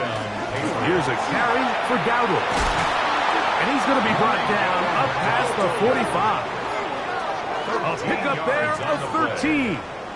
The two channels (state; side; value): identical; both; correlation 1.00